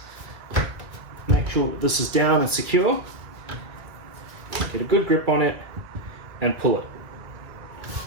make sure that this is down and secure, get a good grip on it and pull it.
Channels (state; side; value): late; left; 2.3 ms